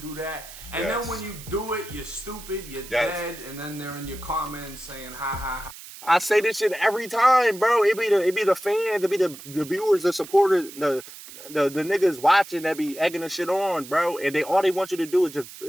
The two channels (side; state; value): right; noise; hiss, 16 dB below the sound